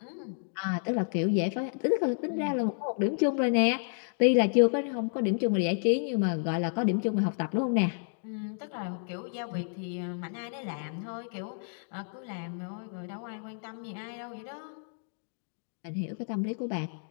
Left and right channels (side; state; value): right; silent; digital silence